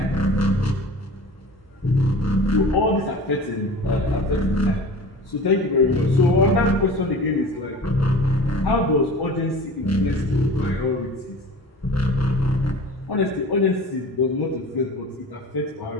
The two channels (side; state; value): both; normal; correlation 0.39